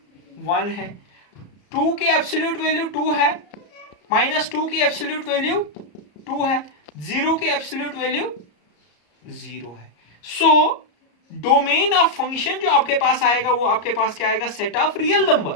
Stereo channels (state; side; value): late; right; 34 ms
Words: 1 है. 2 की एब्सोल्यूट वैल्यू 2 है, -2 की एब्सोल्यूट वैल्यू 2 है, 0 की एब्सोल्यूट वैल्यू 0 है. सो डोमेन ऑफ फंक्शन जो आपके पास आएगा वो आपके पास क्या आएगा? Set of real